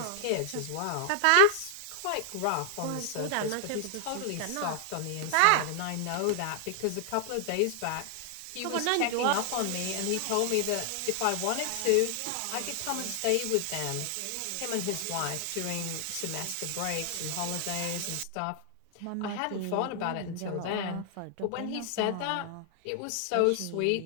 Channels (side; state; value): both; different; correlation 0.00